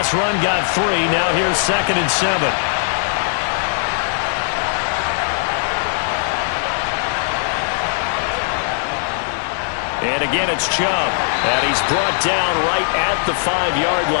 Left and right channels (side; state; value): right; silent; digital silence